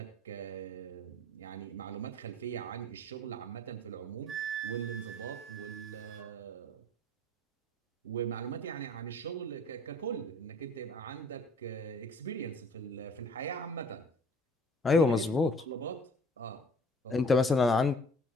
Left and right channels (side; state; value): both; normal; correlation 0.52